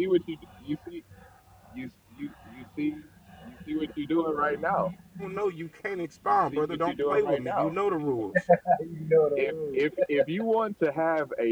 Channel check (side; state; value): both; identical; correlation 1.00